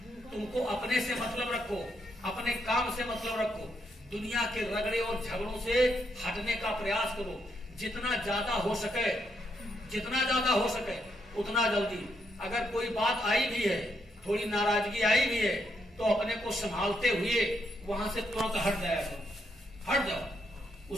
तुमको अपने से मतलब रखो, अपने काम से मतलब रखो। दुनिया के रगड़े और झगड़ों से हटने का प्रयास करो। जितना ज्यादा हो सके उतना जल्दी। अगर कोई बात आई भी है, थोड़ी नाराजगी आई भी है, तो अपने को संभालते हुए वहां से तुरंत हट जाओ।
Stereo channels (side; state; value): both; normal; correlation 0.77